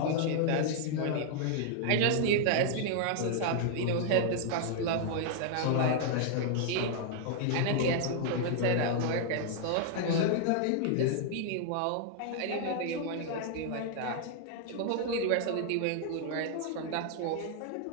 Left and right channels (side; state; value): both; different; correlation 0.00